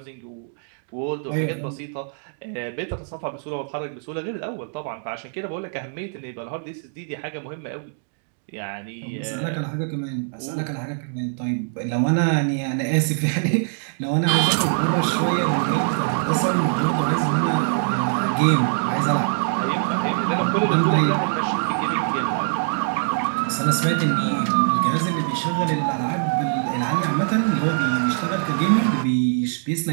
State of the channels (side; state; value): left; silent; digital silence